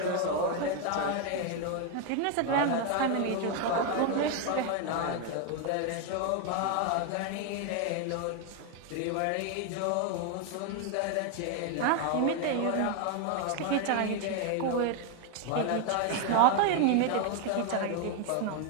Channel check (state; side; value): different; both; correlation 0.01